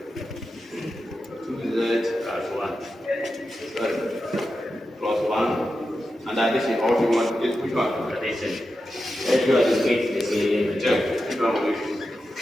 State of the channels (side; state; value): both; normal; correlation 0.90